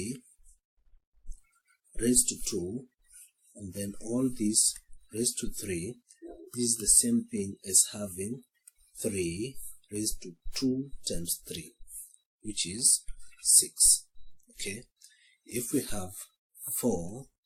raised to 2 and then all these raised to 3, this is the same thing as having 3 raised to 2 times 3, which is 6. Okay, if we have 4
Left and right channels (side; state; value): both; identical; correlation 1.00